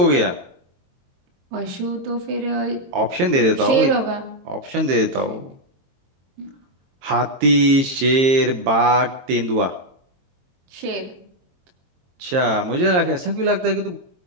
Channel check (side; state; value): left; late; 22 ms